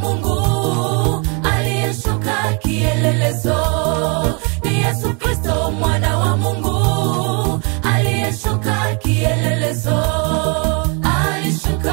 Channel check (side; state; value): left; quieter; 34.0 dB